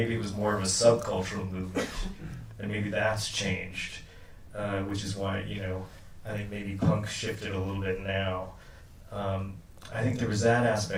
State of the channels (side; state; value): both; identical; correlation 1.00